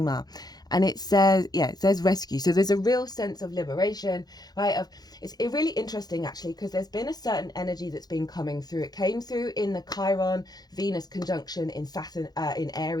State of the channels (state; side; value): late; right; 0.19 ms